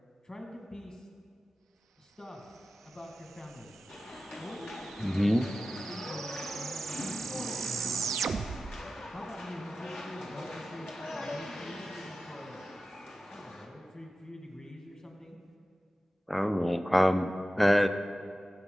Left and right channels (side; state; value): both; normal; correlation 0.94